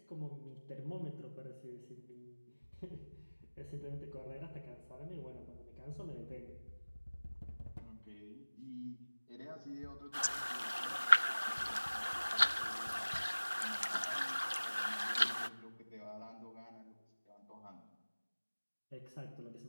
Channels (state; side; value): inverted; both; correlation -1.00